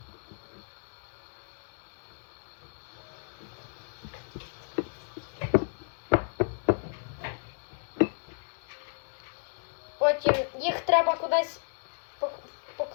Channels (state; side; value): silent; right; digital silence